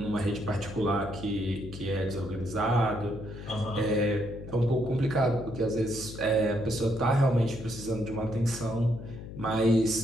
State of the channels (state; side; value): noise; left; hum, 11 dB below the sound